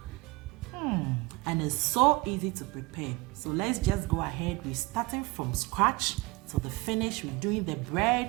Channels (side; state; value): left; quieter; 23.7 dB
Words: And it's so easy to prepare. So let's just go ahead. We're starting from scratch to the finish. We're doing the